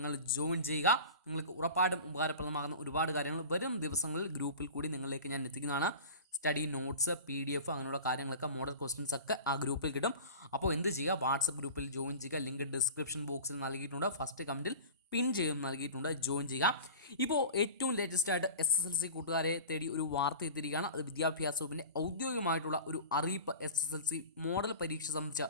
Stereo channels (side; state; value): both; inverted; correlation -0.36